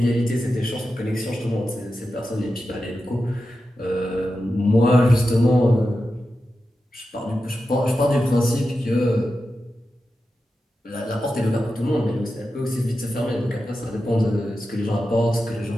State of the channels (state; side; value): normal; both; correlation 0.91